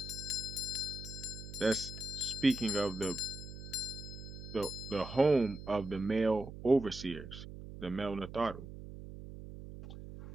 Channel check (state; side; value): noise; right; hum, 12 dB below the sound